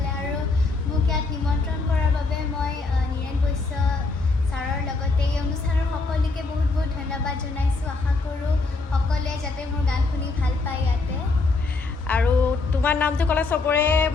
আৰু মোক ইয়াত নিমন্ত্ৰণ কৰাৰ বাবে মই নীৰেণ বৈশ্য ছাৰৰ লগতে এই অনুষ্ঠানৰ সকলোকে বহুত বহুত ধন্যবাদ জনাইছোঁ। আশা কৰোঁ সকলোৱে যাতে মোৰ গান শুনি ভাল পায় ইয়াতে। আৰু তোমাৰ নামটো ক'লে চবৰে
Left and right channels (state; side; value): quieter; right; 3.7 dB